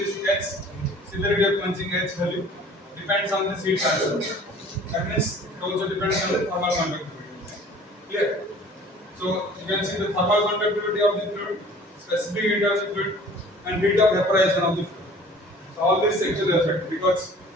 H, severity of quenching H value depends on the heat transfer. That means it also depends on the thermal conductivity. Clear? So you can see the thermal conductivity of the fluid, specific heat of the fluid, and heat of evaporation of the fluid. So all this actually affect, because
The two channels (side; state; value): both; normal; correlation 0.48